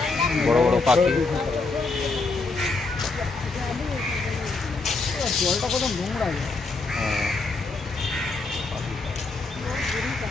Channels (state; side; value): quieter; right; 3.8 dB